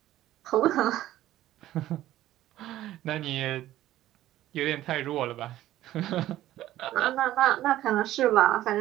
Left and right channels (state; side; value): quieter; left; 14.1 dB